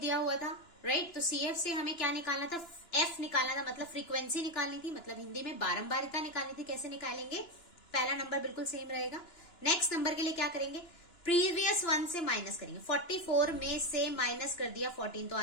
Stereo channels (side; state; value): right; late; 2.9 ms